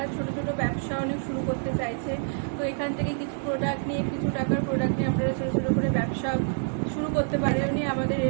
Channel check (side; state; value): left; silent; 60 dB below the other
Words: ছোট ছোট ব্যবসা অনেক শুরু করতে চাইছেন, তো এখান থেকে কিছু প্রোডাক্ট নিয়ে, কিছু টাকার প্রোডাক্ট নিয়ে আপনারা ছোট ছোট করে ব্যবসা শুরু করতে পারেন। আমাদের